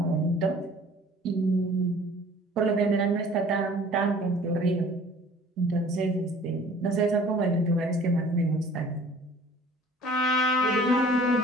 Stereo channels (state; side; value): normal; both; correlation 0.50